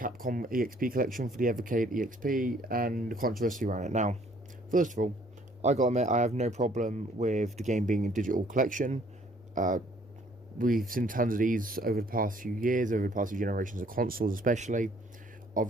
EXP collection for the Evercade EXP and the controversy around it. Now, first of all, I gotta admit, I have no problem with the game being a digital collection. We've seen tons of these over the past few years, over the past few generations of consoles especially,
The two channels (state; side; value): normal; both; correlation 0.61